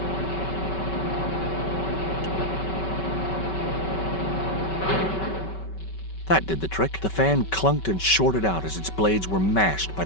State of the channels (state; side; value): late; right; 5.3 ms